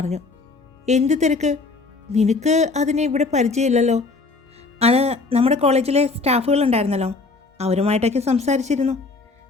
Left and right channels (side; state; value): right; quieter; 3.9 dB